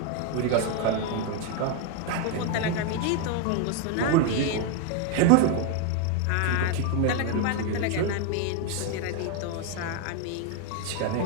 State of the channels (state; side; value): different; both; correlation 0.01